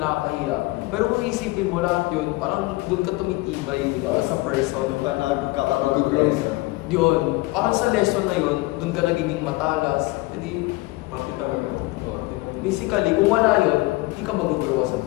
Pero kung isipin mo lahat yun, parang dun ka tumitibay, di ba, as a person. Kakaroon lesson. Yun, parang sa lesson na yun, dun ka nagiging matalas. Hindi, Parte talaga. basically, kung wala yun, hindi ka mag-grow as a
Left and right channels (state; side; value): quieter; right; 21.8 dB